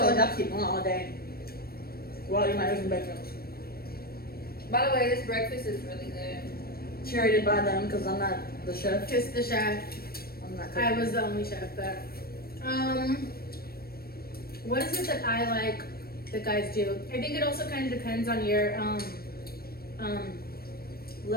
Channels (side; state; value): right; late; 0.44 ms